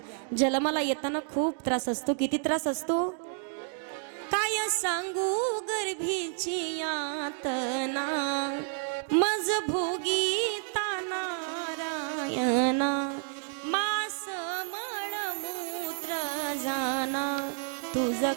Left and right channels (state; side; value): silent; left; 55 dB below the other